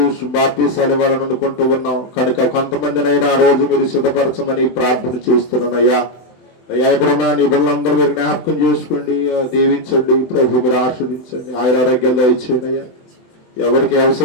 బాప్తీసాలు ఇవ్వాలని అనుకుంటూ ఉన్నాం. కనుక కొంతమందినైనా ఆ రోజు మీరు సిద్ధపరచమని ప్రార్థన చేస్తున్నాను అయ్యా. అయ్యా ఇప్పుడున్న నీ బిడ్డలందరూ మీరు జ్ఞాపకం చేసుకోండి, దీవించండి ప్రభు, మీరు ఆస్వాదించండి, ఆయురారోగ్యాలు దయచేయండి అయ్యా. ఎవరికి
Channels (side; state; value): right; late; 24 ms